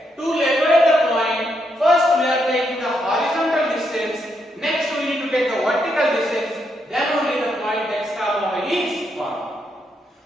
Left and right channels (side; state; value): both; normal; correlation 0.79